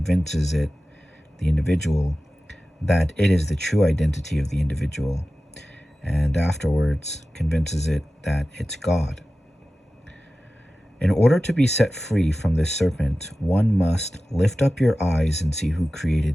it, the individual, that it is the true identity of the individual, and afterwards convinces it that it's God. In order to be set free from this serpent, one must lift up your eyes and see who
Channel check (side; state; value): both; normal; correlation 0.95